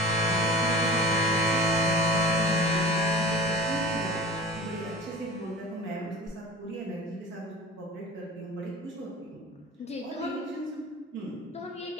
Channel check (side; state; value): both; normal; correlation 0.38